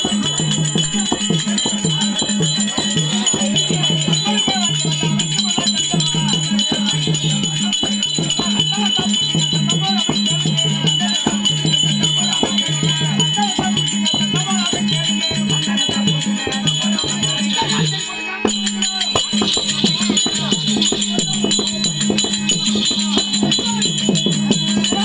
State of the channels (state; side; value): identical; both; correlation 1.00